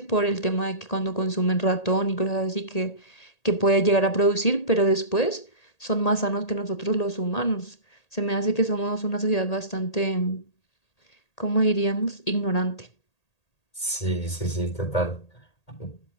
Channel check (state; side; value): late; right; 1.8 ms